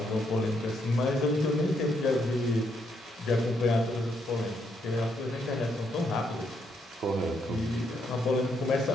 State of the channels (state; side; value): normal; both; correlation 0.75